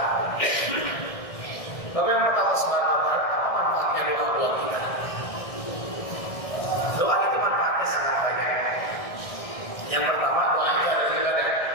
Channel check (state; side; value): late; right; 1.6 ms